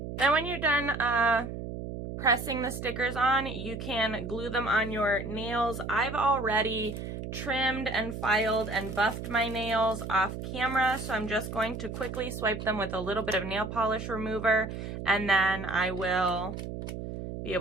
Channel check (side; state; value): right; noise; hum, 7 dB below the sound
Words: Then when you're done pressing the stickers on, you can glue them on your nails. I've already trimmed and filed and buffed my nails off camera, so I'm just going to quickly swipe them with a little bit of nail polish remover, and then I will be